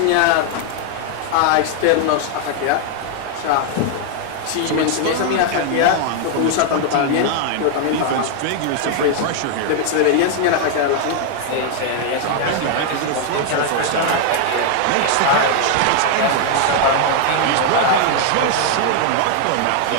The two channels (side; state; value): both; different; correlation 0.00